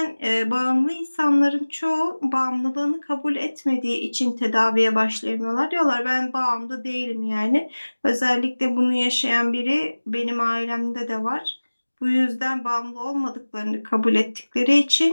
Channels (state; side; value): inverted; both; correlation -1.00